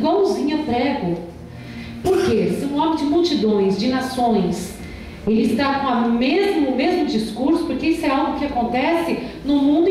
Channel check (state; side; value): identical; both; correlation 1.00